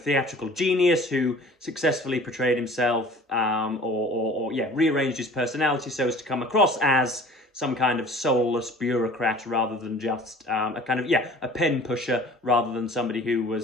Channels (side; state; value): both; normal; correlation 0.47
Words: genius who successfully portrayed himself or rearranged his personality so as to come across as some kind of soulless bureaucrat rather than just a pen pusher, rather than somebody who